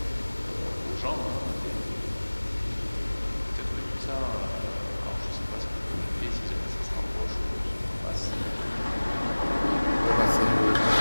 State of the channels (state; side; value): inverted; both; correlation -1.00